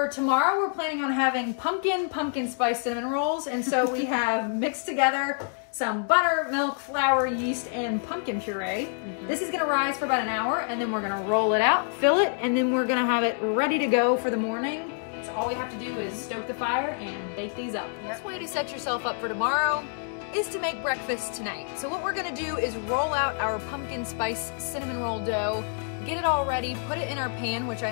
tomorrow, we're planning on having pumpkin spice cinnamon rolls. And so we have mixed together some butter, milk, flour, yeast, and pumpkin puree. This is gonna rise for about an hour, and then we're gonna roll it out, fill it, and then we're gonna have it ready to go for the morning. So all we have to do is stoke the fire and bake these up. The best way to set yourself up for tomorrow is to make breakfast tonight. So what we're gonna do is roll out our pumpkin spice cinnamon roll dough, get it all ready, put it in our pan, which I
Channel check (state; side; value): silent; right; 60 dB below the other